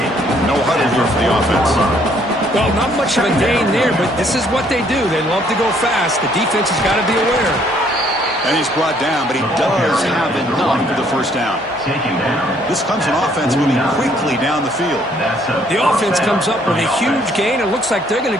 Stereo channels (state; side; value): normal; both; correlation 0.65